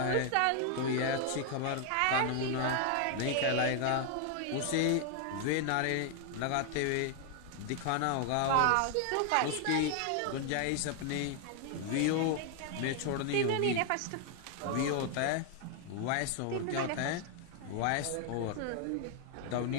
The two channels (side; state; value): both; different; correlation 0.00